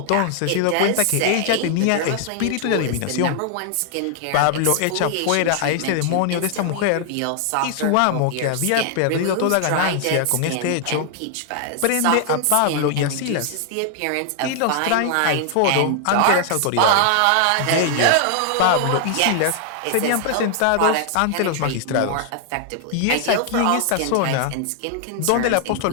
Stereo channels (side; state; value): both; different; correlation 0.00